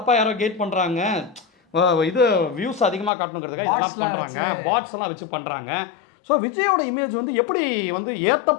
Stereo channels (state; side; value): drops out; right; at 3.1 s